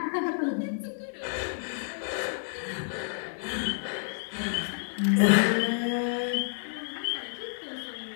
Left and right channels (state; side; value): silent; right; digital silence